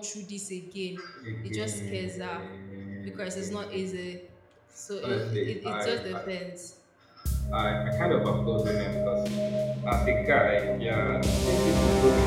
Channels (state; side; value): identical; both; correlation 1.00